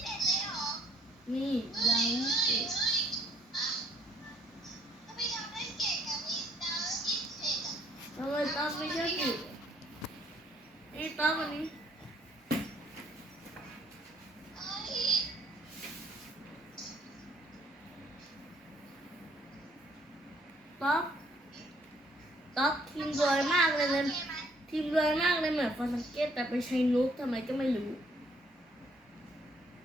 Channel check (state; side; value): normal; both; correlation 0.65